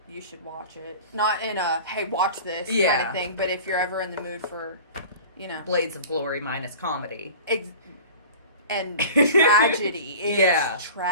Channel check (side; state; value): both; inverted; correlation -0.40